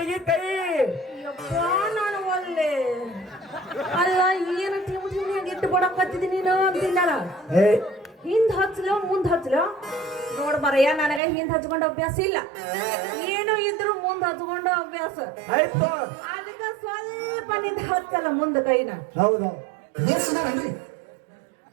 ಕೈ. ಯಪ್ಪ ನಾನು ಒಲ್ಲೆ ಅಲ್ಲ ಏನು ಟಿಮಿಟಿಮಿಯಾಗಿ ಇಟ್ಟು ಬಡಕತ್ತಿದ್ದೀನಿ ನೀನು ಅಂತಿನ್ನಲ್ಲ. ಹಿಂದ್ ಹಚ್ಚಲೋ ಮುಂದ್ ಹಚ್ಚಲೋ ನೋಡ್ ಬರಯ್ಯ, ನನಗ ಹಿಂದ್ ಹಚ್ಕೊಂಡ ಅಭ್ಯಾಸ ಇಲ್ಲ. ಏನು ಇದ್ರು ಮುಂದ್ ಹಚ್ಕೊಂಡ ಅಭ್ಯಾಸ ಆಯ್ತು. ಅದಕ್ಕ ಸ್ವಲ್ಪ ನಿಂದ ಹಚ್ಚಲ್ಲ ಮುಂದ ಕೈನ. ಹೌದು.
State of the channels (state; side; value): drops out; left; at 11.2 s